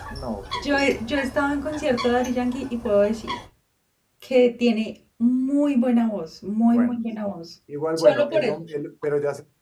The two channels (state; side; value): identical; both; correlation 1.00